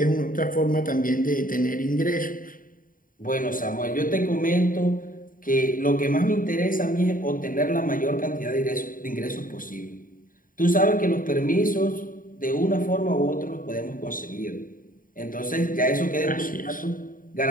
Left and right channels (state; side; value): late; right; 0.40 ms